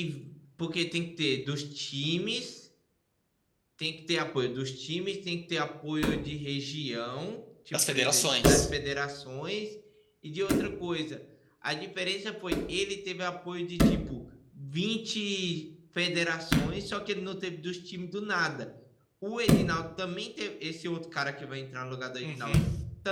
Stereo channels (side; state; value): both; identical; correlation 1.00